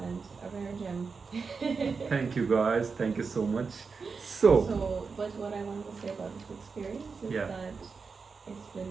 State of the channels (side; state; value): left; quieter; 5.0 dB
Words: and a rare gem. Thank you guys, thank you so much. So But what I wanted to say about this experience is Yeah. that it's